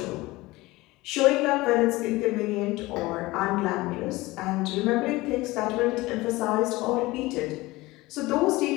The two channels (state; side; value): quieter; right; 20.3 dB